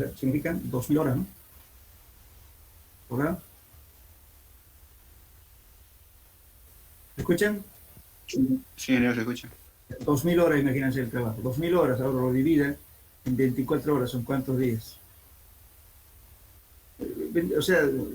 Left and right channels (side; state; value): both; identical; correlation 1.00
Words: significan? 2000 horas, ¿no? ¿Verdad? ¿Me escuchan? Sí, señor, se escucha. 2000 horas, imagínense el trabajo. 2000 horas, ahora lo divide en 24 horas, ¿son cuántos días? O sea,